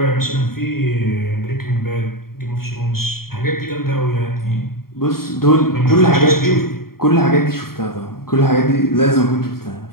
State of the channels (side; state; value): right; late; 0.93 ms